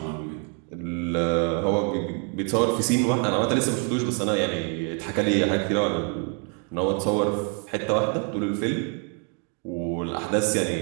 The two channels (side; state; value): left; quieter; 39.8 dB